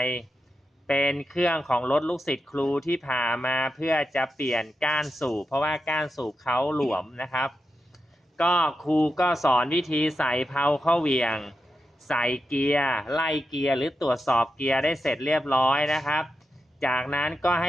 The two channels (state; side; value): normal; both; correlation 0.88